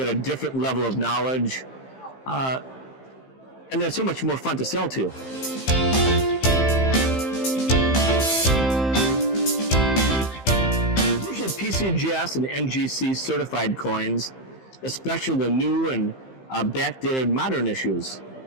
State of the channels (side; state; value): right; late; 15 ms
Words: a different level of knowledge, and they're so much more fun to sell to. Usually PCGS and NGC certified coins, especially the new and backdated modern issues.